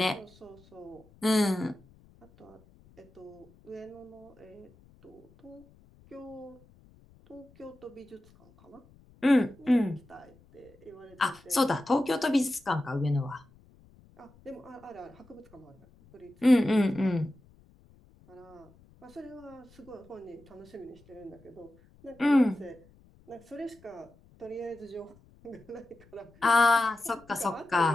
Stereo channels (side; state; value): left; noise; rumble, 27 dB below the sound